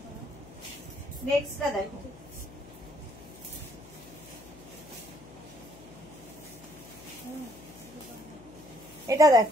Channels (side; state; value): left; noise; hum, 19 dB below the sound